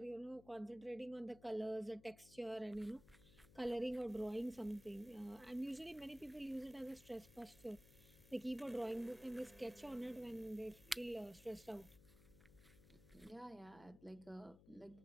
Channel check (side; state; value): left; noise; hum, 20 dB below the sound